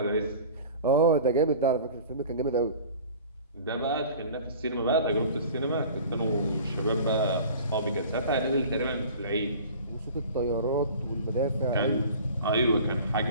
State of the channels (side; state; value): both; inverted; correlation -0.42